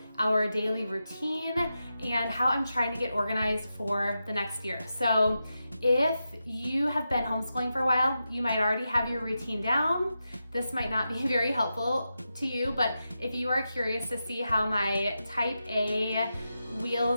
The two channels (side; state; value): both; inverted; correlation -0.89